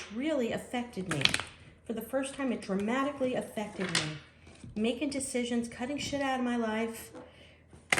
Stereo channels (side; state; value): both; identical; correlation 1.00